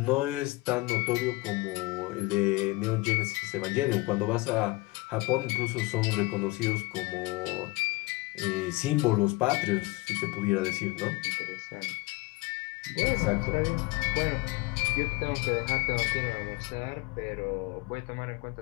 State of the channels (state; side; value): quieter; right; 22.6 dB